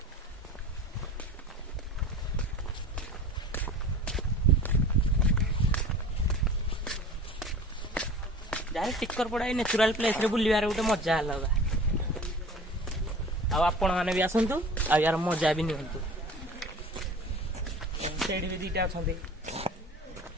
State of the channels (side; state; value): both; normal; correlation 0.41